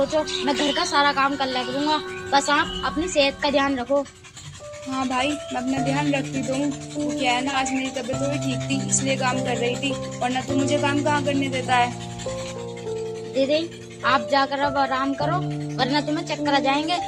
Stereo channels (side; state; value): both; identical; correlation 1.00